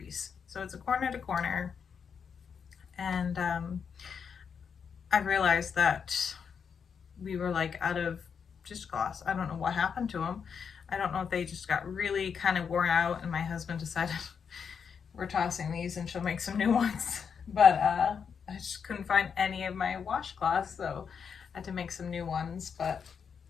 So it's a corner to corner. And I realized that we were like out of dishcloths. I don't know what happened to them. I don't know if they just got really kind of worn out and my husband decided we're tossing these and she'll make some new ones. But I just couldn't find any of my washcloths, so I had to make some new ones. But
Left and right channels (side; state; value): right; quieter; 6.7 dB